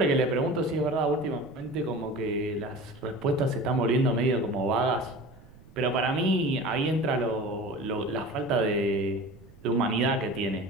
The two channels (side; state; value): right; noise; rumble, 23 dB below the sound